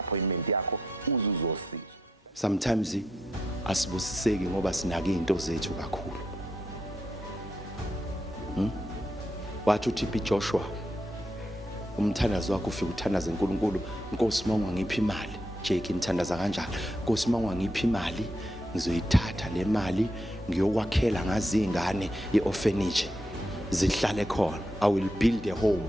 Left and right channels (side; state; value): both; normal; correlation 0.81